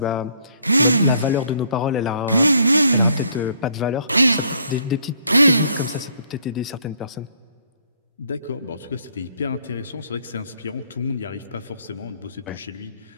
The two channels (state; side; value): inverted; both; correlation -0.65